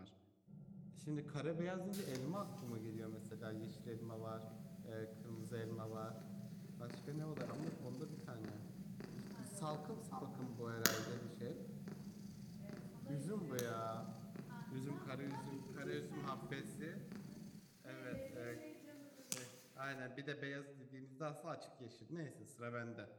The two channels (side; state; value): both; identical; correlation 1.00